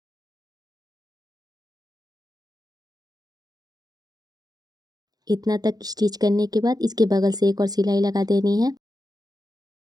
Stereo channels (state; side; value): late; left; 0.19 ms